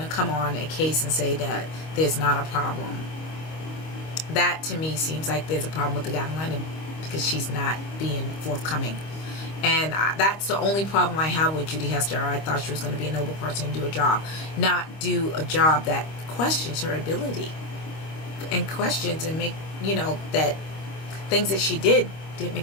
to come on a case and say that there's not a problem, that to me seems like there's a problem with the guiding item, because she's not being forthcoming. And that's the only problem I have with Judy Hester. I thought she was going to be a noble person and do a job, not do a job that questions her ability and questions and make, you know, that things that she didn't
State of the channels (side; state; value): right; late; 25 ms